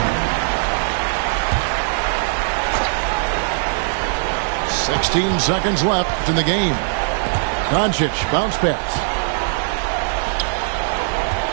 "16 seconds left in the game. Doncic, bounce pass.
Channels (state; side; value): silent; left; digital silence